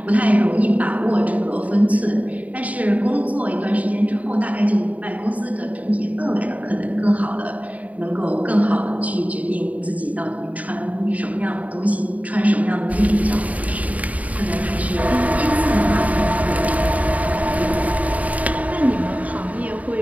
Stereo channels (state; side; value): late; left; 0.071 ms